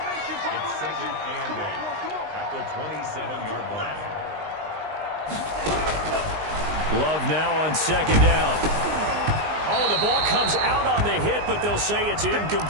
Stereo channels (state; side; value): late; left; 19 ms